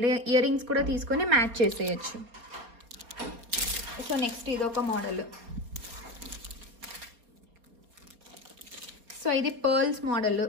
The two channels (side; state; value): left; late; 4.3 ms